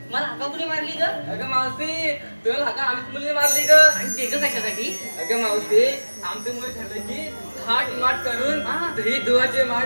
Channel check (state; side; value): inverted; both; correlation -1.00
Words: मला हाका कुणी मारली ग? अगं मावशी तुला हाका आम्हीच मुलीने मारली ग. आणि ते ग कशासाठी? अगं मावशी आमचे मुली ठरलं की थाट माट करून हा. दही दुधाचे माठ